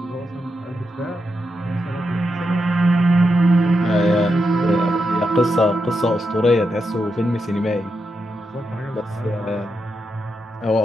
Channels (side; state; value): both; normal; correlation 0.85